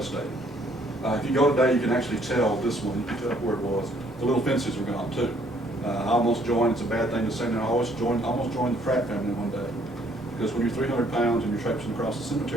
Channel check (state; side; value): normal; both; correlation 0.64